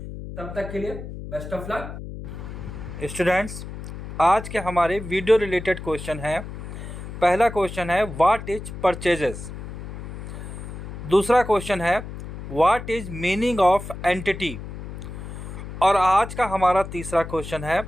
तब तक के लिए बेस्ट ऑफ लक। स्टूडेंट्स, आज के हमारे वीडियो रिलेटेड क्वेश्चन है। पहला क्वेश्चन है व्हाट इज परचेजेस। दूसरा क्वेश्चन है what is meaning of entity. और आज का हमारा तीसरा क्वेश्चन है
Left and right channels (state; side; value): noise; left; hum, 10 dB below the sound